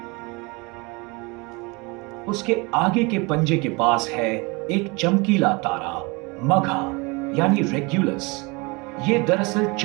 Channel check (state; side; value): quieter; left; 26.9 dB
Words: उसके आगे के पंजे के पास है एक चमकीला तारा मघा यानी रेग्युलस। ये दरअसल